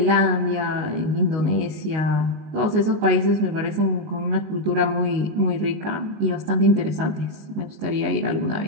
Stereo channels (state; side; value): late; left; 19 ms